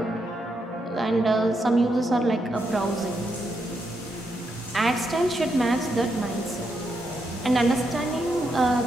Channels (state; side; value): normal; both; correlation 0.81